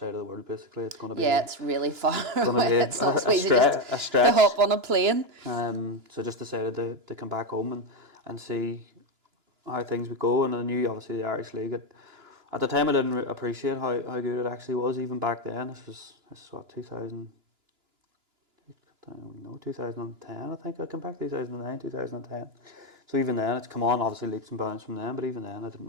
of the world, basically, it's going to be... Yeah, it's really far away. It's not so easy just to hop on a plane. So I just decided to come back home and see how things would go. And I knew, obviously, the Irish League. At the time, I didn't appreciate how good it actually was, even back then. This is what, 2000... I don't know, 2010, I think. I came back 2009, 2010. So even then, it's come on, obviously leaps and bounds from then, but even then I didn't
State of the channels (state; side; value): late; left; 2.9 ms